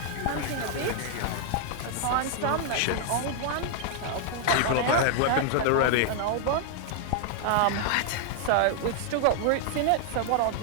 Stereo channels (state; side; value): different; both; correlation 0.00